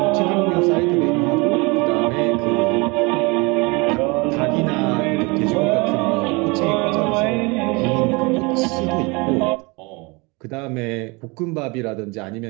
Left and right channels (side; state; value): left; quieter; 27.3 dB